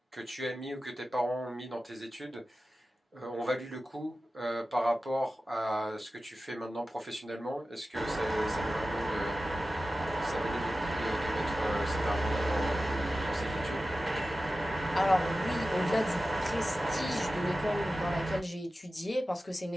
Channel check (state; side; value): normal; both; correlation 0.94